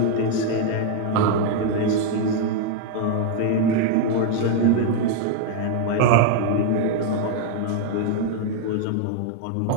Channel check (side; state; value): both; different; correlation 0.00